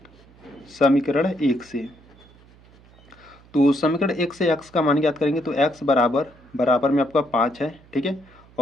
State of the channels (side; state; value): right; noise; hum, 26 dB below the sound